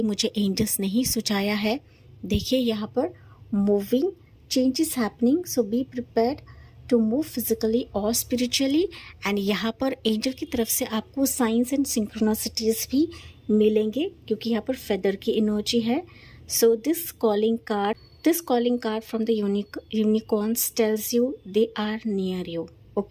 मुझे एंजल्स ने ही सुझाया है। देखिए यहाँ पर moving change is happening, so be prepared to move physically और स्पिरिचुअली। एंड यहाँ पर एंजल की तरफ से आपको साइंस एंड सिंक्रोनिसिटीज भी मिलेंगे, क्योंकि यहाँ पर फेदर की एनर्जी है। So this calling card from the unicorns tells you they are near you.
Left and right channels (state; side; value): identical; both; correlation 1.00